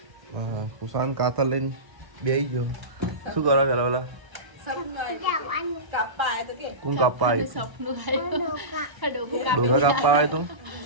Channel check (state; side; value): late; left; 1.0 ms